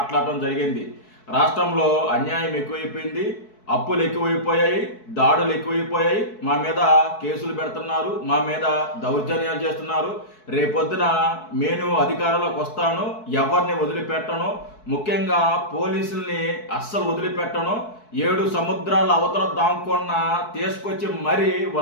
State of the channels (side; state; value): right; late; 4.6 ms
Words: జరిగింది. రాష్ట్రంలో అన్యాయం ఎక్కువైపోయింది, అప్పులు ఎక్కువైపోయాయి, దాడులు ఎక్కువైపోయాయి, మా మీద కేసులు పెడుతున్నారు, మా మీద దౌర్జన్యాలు చేస్తున్నారు. రేపొద్దున నేను అధికారంలోకి వస్తాను, ఎవరిని వదిలిపెట్టను, ముఖ్యంగా పోలీసుల్ని అస్సలు వదిలిపెట్టను, 7 సముద్రాల అవతల దాంకున్న తీసుకొచ్చి మరీ